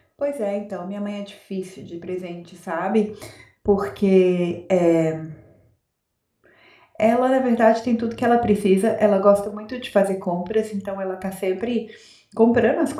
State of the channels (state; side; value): identical; both; correlation 1.00